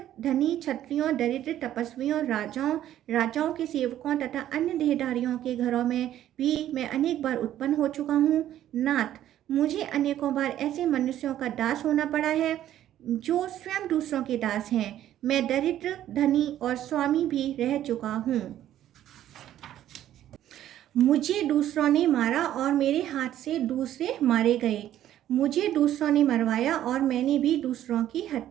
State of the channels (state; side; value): quieter; left; 12.1 dB